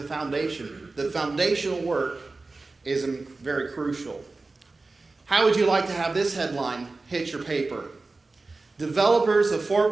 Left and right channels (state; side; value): quieter; left; 3.5 dB